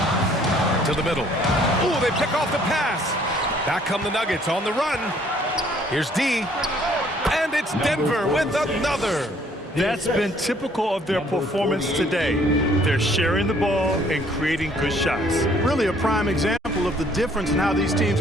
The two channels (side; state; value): both; normal; correlation 0.61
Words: To the middle. Ooh, they pick off the pass. Back come the Nuggets on the run. Here's D. And it's Denver with another. That's been typical of their performance today. They're sharing the ball and creating good shots. Really a prime example of the difference in how these teams